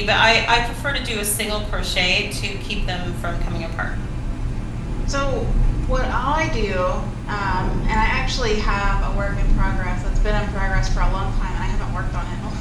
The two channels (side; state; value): both; identical; correlation 1.00